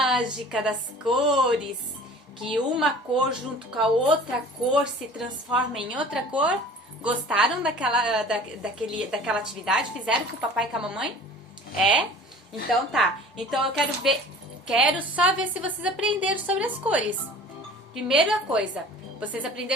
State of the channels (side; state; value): both; normal; correlation 0.44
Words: das cores, que uma cor junto com a outra cor se transforma em outra cor. Gostaram daquela atividade? Fizeram com o papai e com a mamãe? É? Então tá. Então eu quero só ver se vocês aprenderam sobre as cores. Primeira coisa, vocês